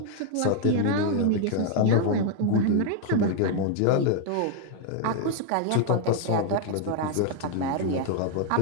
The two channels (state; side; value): different; both; correlation 0.00